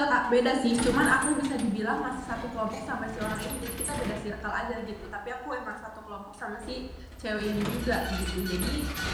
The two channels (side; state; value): both; identical; correlation 1.00